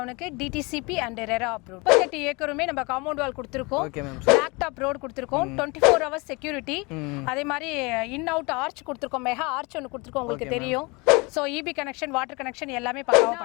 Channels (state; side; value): quieter; right; 27.0 dB